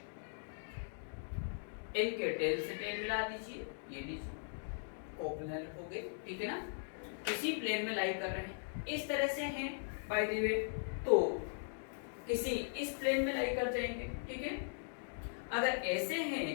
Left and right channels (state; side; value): silent; right; digital silence